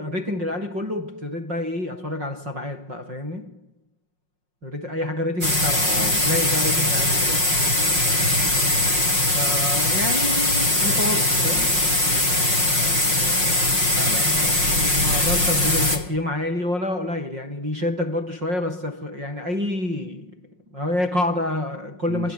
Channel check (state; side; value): late; left; 5.5 ms